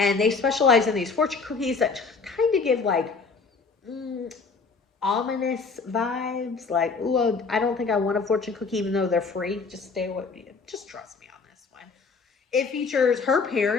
they specialize in these fortune cookies that kind of give like ominous vibes. Like, ooh, I don't think I want a fortune cookie even though they're free. Just stay with me. Just trust me on this one. It features her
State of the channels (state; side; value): quieter; right; 4.7 dB